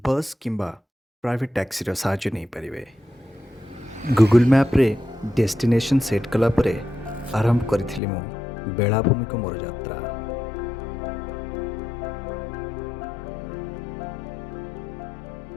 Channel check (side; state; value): right; drops out; at 8.0 s